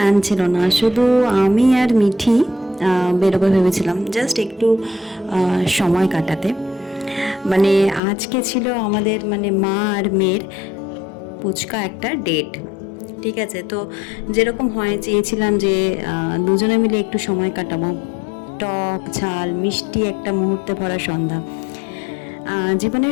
ছিল না, শুধু আমি আর মিঠি বেরোবে ভেবেছিলাম জাস্ট একটু সময় কাটাতে। মানে আজকে ছিল আমাদের মানে মা আর মেয়ের পুচকা একটা ডেট। ঠিক আছে, তো যেরকম হয় চেয়েছিলাম যে দুজনে মিলে একটু সময় কাটাবো, টক ঝাল মিষ্টি একটা মুহূর্তে ভরা সন্ধ্যা।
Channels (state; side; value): drops out; right; at 8.0 s